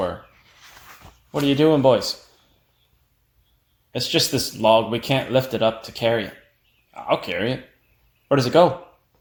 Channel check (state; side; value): identical; both; correlation 1.00